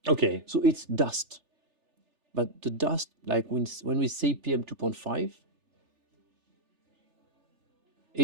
Okay. So it's dust. But the dust, like when we say PM 2.5,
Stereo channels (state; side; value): late; left; 3.3 ms